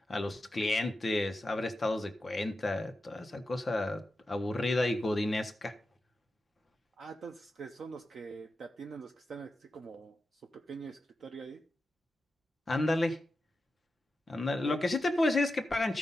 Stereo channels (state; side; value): normal; both; correlation 0.91